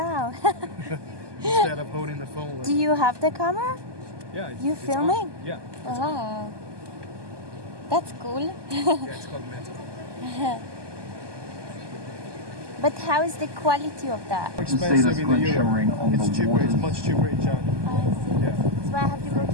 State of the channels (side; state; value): left; late; 1.2 ms